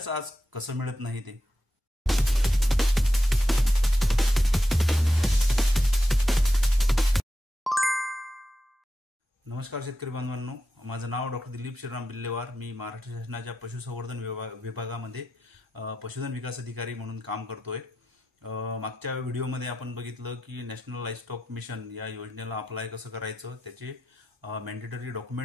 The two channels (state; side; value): normal; both; correlation 0.88